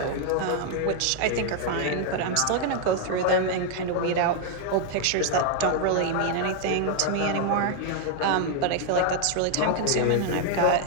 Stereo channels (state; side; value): different; both; correlation 0.00